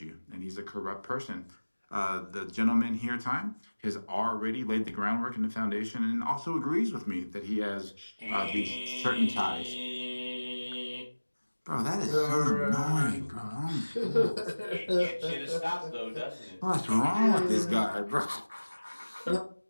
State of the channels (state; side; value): inverted; both; correlation -1.00